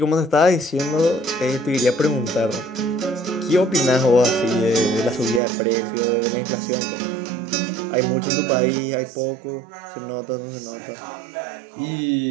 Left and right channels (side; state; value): left; drops out; at 5.4 s